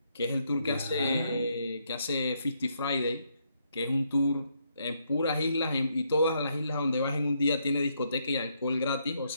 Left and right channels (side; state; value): both; inverted; correlation -0.75